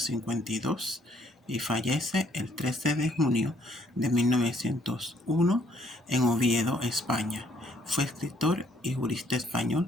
y fallece el 13 de junio de 1901 en Oviedo, España. Fue escritor y jurista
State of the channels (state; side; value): normal; both; correlation 0.66